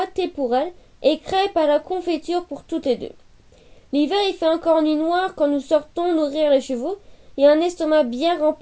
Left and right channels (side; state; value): both; identical; correlation 1.00